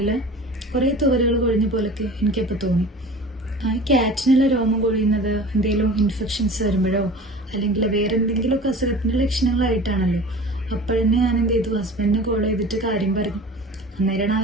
കുറേ തുവലുകൾ കൊഴിഞ്ഞ പോലൊക്കെ എനിക്കപ്പോൾ തോന്നി. ക്യാറ്റിനുള്ള രോമം കൊഴിയുന്നത് എന്തെങ്കിലും ഇൻഫെക്ഷൻസ് വരുമ്പോഴോ അല്ലെങ്കിൽ വേറെ എന്തെങ്കിലുമൊക്കെ അസുഖത്തിൻ്റെ ലക്ഷണങ്ങളായിട്ടാണല്ലോ. അപ്പോഴന്നെ ഞാൻ എന്ത് ചെയ്തു, ഹസ്ബൻഡിനെ കോൾ ചെയ്തിട്ട് കാര്യം പറഞ്ഞു. അന്നേരമാണ്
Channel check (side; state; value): both; normal; correlation 0.39